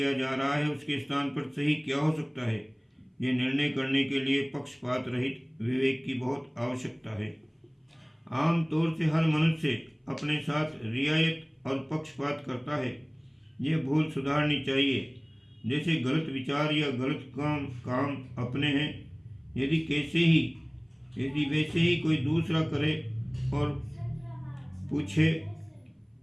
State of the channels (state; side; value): identical; both; correlation 1.00